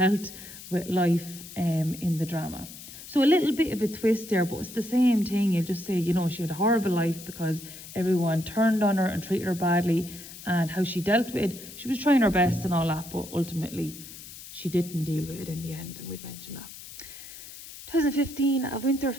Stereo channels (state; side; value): noise; left; hiss, 14 dB below the sound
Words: with life in the drama. So a little bit of a twist there, but it's the same thing. You'll just say, you know, she had a horrible life because everyone turned on her and treated her badly, and how she dealt with it. She was trying her best and all that, but ultimately she didn't deal with it in the end, and we'd mentioned that. 2015, a winter